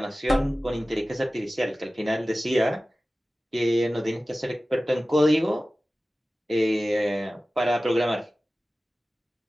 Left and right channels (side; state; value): both; normal; correlation 0.96